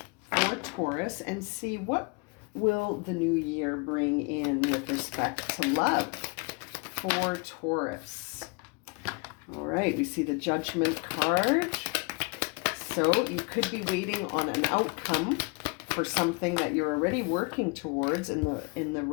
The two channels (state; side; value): quieter; right; 31.0 dB